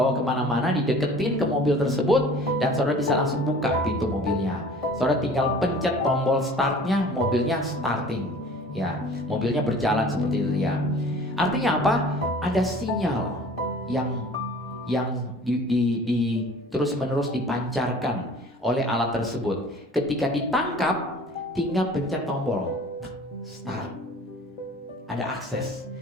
kemana-mana, dideketin ke mobil tersebut, dan saudara bisa langsung buka pintu mobilnya. Saudara tinggal pencet tombol startnya, mobilnya starting ya, mobilnya berjalan seperti itu ya. Artinya apa? Ada sinyal yang terus-menerus dipancarkan oleh alat tersebut. Ketika ditangkap, tinggal pencet tombol start. Ada akses,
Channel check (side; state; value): both; normal; correlation 0.46